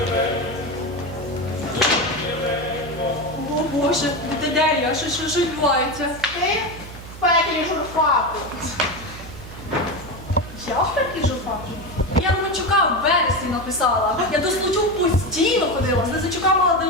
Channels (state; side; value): noise; right; hum, 15 dB below the sound